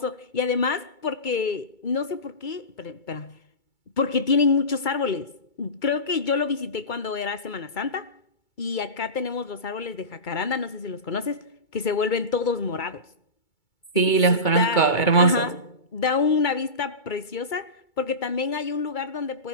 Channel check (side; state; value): right; late; 2.3 ms